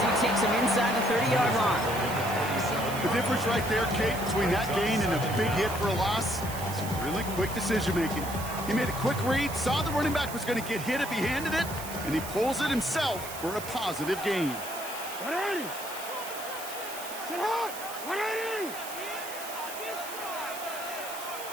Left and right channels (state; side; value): noise; right; hiss, 11 dB below the sound